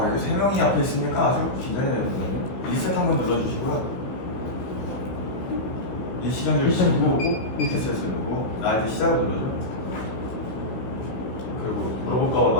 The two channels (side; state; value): right; late; 16 ms